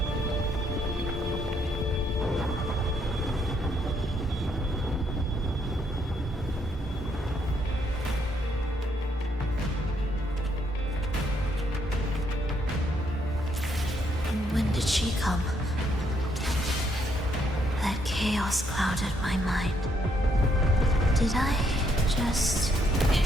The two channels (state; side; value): normal; both; correlation 0.73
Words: When did she come? That chaos clouded my mind. Did I just...